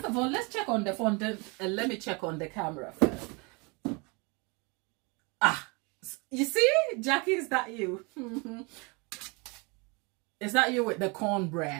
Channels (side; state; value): left; quieter; 29.7 dB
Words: of all, let's check on the fondant, and let me check on the camera first. Ah, you see, Jackie, is that you? Is that you with the